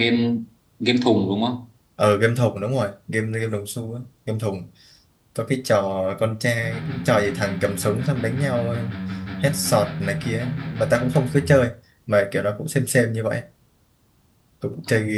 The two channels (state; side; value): identical; both; correlation 1.00